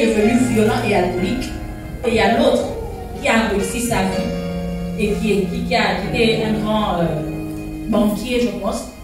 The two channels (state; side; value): identical; both; correlation 1.00